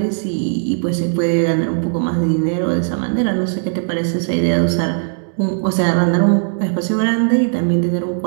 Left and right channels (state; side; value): silent; left; digital silence